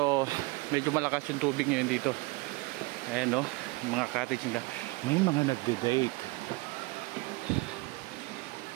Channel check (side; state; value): left; quieter; 24.7 dB